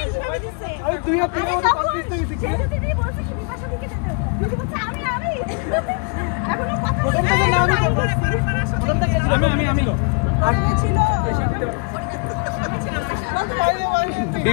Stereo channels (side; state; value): right; quieter; 33.6 dB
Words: আমি দুই হাত দিয়ে কনফিডেন্স হয়ে গেছি দিদি বলছে কি বিপাশা দিকে যেতে দিদি বলছে আমি এখনো কথা প্রথমটা তো না আমি প্রথমটা কে ছিল আমি ছিল